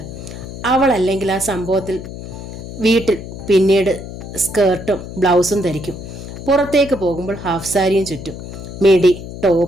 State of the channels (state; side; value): noise; left; hum, 11 dB below the sound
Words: അവളല്ലെങ്കിൽ ആ സംഭവത്തിൽ വീട്ടിൽ പിന്നീട് സ്കേർട്ടും ബ്ലൗസും ധരിക്കും. പുറത്തേക്ക് പോകുമ്പോൾ ഹാഫ് സാരിയും ചുറ്റും. മിഡി,